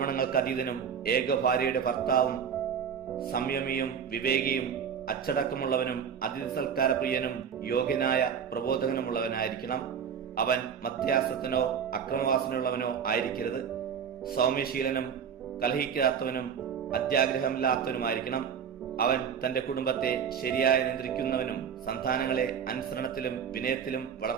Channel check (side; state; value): left; quieter; 7.5 dB